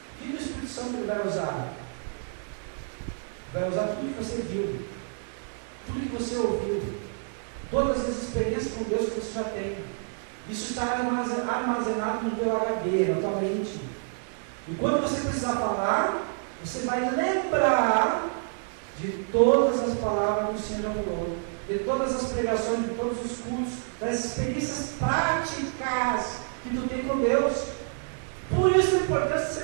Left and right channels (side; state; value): left; silent; 59 dB below the other